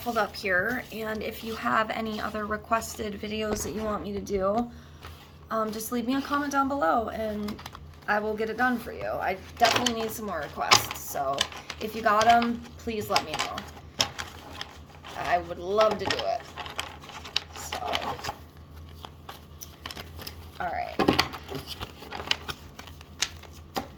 up here, and if you have any other requested videos that you want me to do, just leave me a comment down below and I will get it done for you. I definitely need some more requests, so if you got them, please let me know. I would love to do it. So, alright.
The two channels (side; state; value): both; identical; correlation 1.00